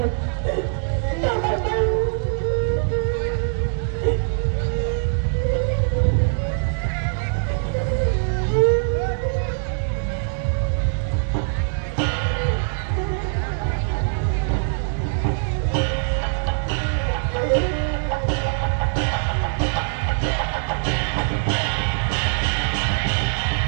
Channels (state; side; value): silent; left; digital silence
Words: chào các bạn